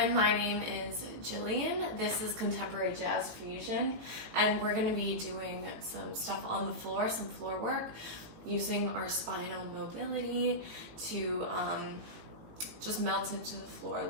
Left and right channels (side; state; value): left; late; 18 ms